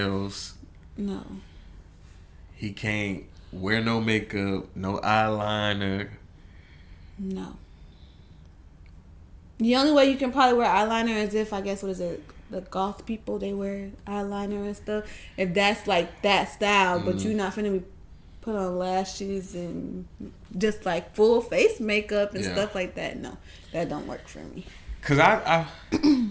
No. He can't wear no makeup, no eyeliner. No. The only way you can probably wear eyeliner is if, I guess, what is it? The goth people, they wear eyeliner and stuff. If that's like that style, but you're not finna be put on lashes and just like full face makeup and stuff like that. No, that don't work for me. Cause I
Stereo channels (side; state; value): both; identical; correlation 1.00